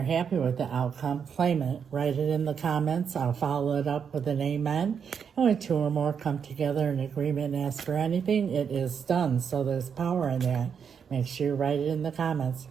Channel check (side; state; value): left; quieter; 7.0 dB